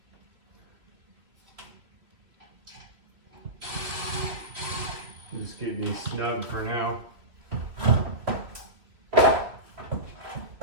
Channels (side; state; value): left; late; 3.2 ms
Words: Just getting these snug for now.